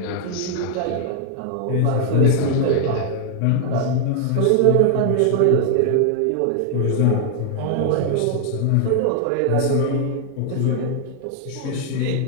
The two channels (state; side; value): different; both; correlation 0.00